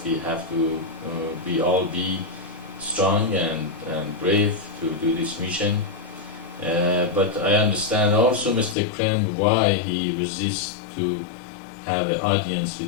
we have to we all be strong and brave to do this mission. But I understand also Mr. Krem why he resists to have an audience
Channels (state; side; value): drops out; right; at 8.8 s